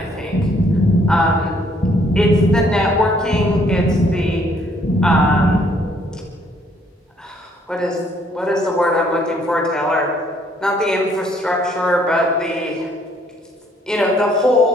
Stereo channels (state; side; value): normal; both; correlation 0.65